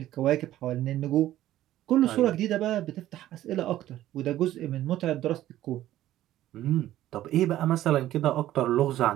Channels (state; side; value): quieter; left; 13.8 dB